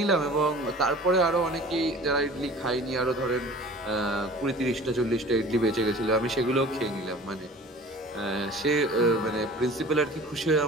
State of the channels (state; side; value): normal; both; correlation 0.44